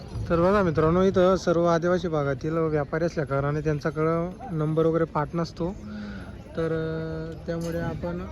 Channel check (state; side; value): identical; both; correlation 1.00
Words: तर बघा मित्रांनो इथं सर्व आदिवासी भागातील व्यापारी असल्या कारणाने त्यांच्याकडं नंबर वगैरे पाठ नसतो. तर त्यामुळे आपण